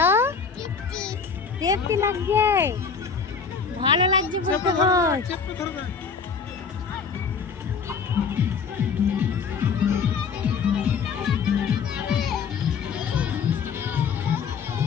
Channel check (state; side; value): quieter; right; 5.8 dB